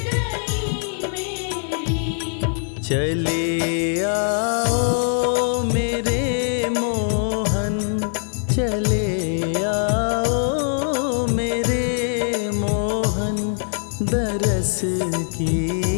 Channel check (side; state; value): right; silent; digital silence